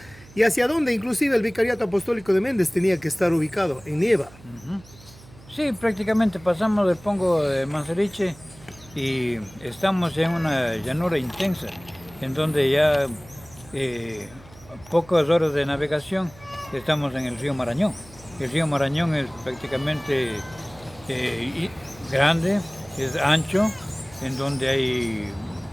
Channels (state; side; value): noise; right; hum, 22 dB below the sound